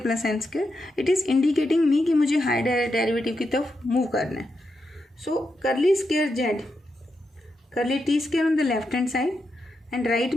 plus N square, it is indicating me कि मुझे higher derivative की तरफ मूव करना है। So curly square Z, curly T square on the left hand side and right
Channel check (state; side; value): normal; both; correlation 0.85